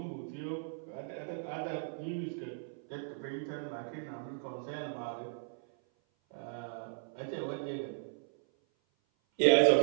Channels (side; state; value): left; silent; 54 dB below the other